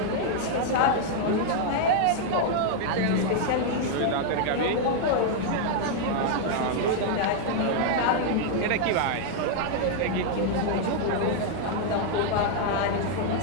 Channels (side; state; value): both; different; correlation 0.00